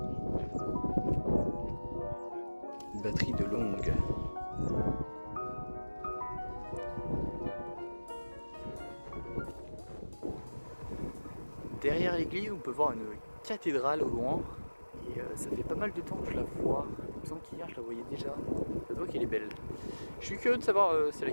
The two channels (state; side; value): inverted; both; correlation -1.00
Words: Une batterie de longue. Derrière l'église, on peut voir une cathédrale au loin. Et ça fait pas mal de temps que je la vois. Il me semble qu'hier je la voyais déjà. Ça se voit qu'elle est belle. Je suis curieux de savoir c'est